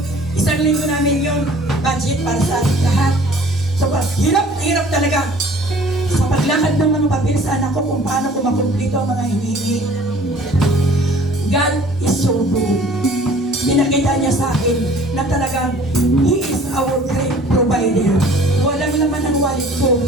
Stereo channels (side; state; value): both; normal; correlation 0.51